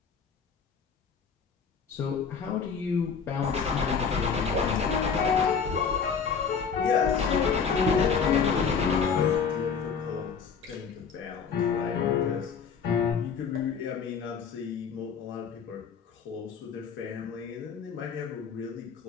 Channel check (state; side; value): quieter; right; 6.2 dB